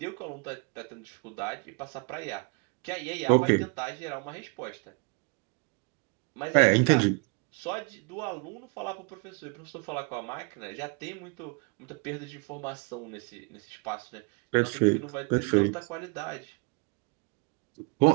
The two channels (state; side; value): quieter; left; 32.7 dB